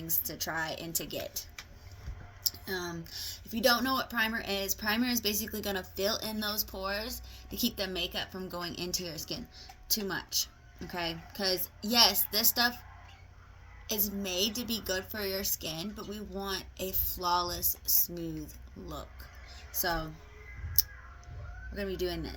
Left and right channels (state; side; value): identical; both; correlation 1.00